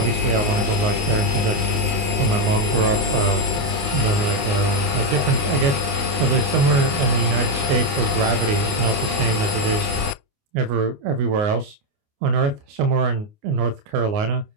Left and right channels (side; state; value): left; late; 29 ms